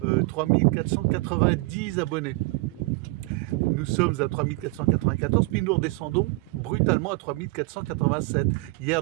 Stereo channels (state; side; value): quieter; left; 24.0 dB